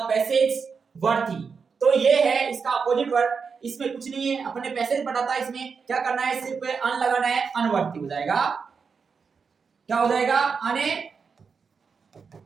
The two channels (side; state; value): left; quieter; 5.6 dB